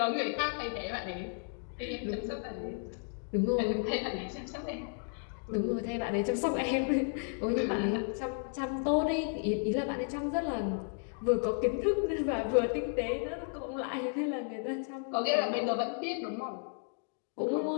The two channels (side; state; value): right; silent; 55 dB below the other